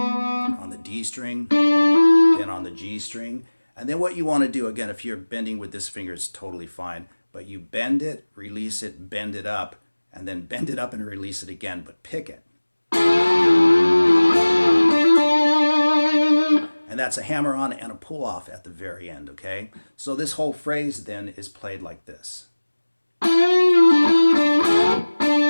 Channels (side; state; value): both; inverted; correlation -1.00